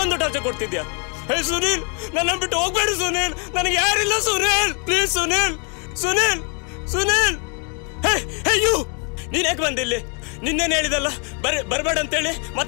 ಟಾರ್ಚರ್ ಕೊಡ್ತಿದ್ಯಾ? ಹೇ ಸುನೀಲ್, ನನ್ನ ಬಿಟ್ಟು ಹೋಗ್ಬೇಡ ಸುನೀಲ್, ನನಗೆ ಯಾರಿಲ್ಲ Sunil, please Sunil. Sunil, Sunil, hey you, ನೀನ್ ಯಾಕೆ ಬಂದಿಲ್ಲಿ? ನಿನ್ನೇನು ಹೇಳಿದಲ್ಲ ಬರ್ಬೇಡ ಅಂತೇಳಿ,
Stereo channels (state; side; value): quieter; right; 38.2 dB